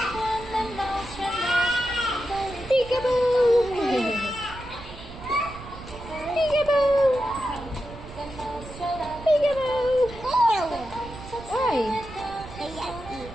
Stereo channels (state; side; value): noise; right; rumble, 15 dB below the sound